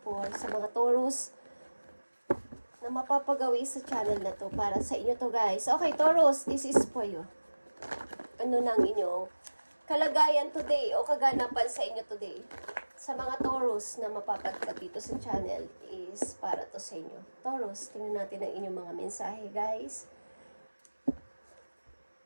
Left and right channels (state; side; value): inverted; both; correlation -1.00